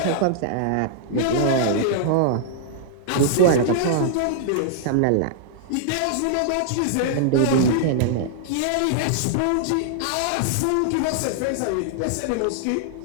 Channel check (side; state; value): both; different; correlation -0.01